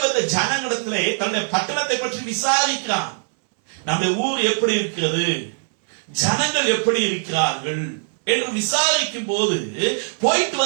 வந்த ஜனங்களிடத்திலே தன்னுடைய பட்டணத்தை பற்றி விசாரிக்கிறான். நம்முடைய ஊர் எப்படி இருக்கிறது, ஜனங்கள் எப்படி இருக்கிறார்கள் என்று விசாரிக்கும் போது போயிட்டு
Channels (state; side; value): silent; left; 64 dB below the other